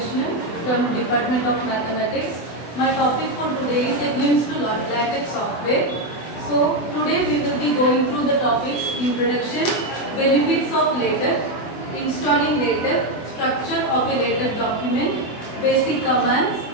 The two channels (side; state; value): right; late; 24 ms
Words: from Department of Mathematics. My topic for today is a glimpse to LaTeX software. So today we will be going through the topics: introduction, benefits of LaTeX, installing LaTeX, structure of a LaTeX document, basic commands,